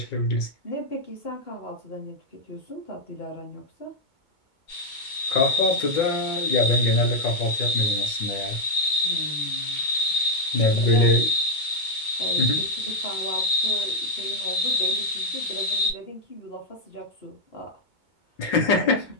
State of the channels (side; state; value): right; late; 2.2 ms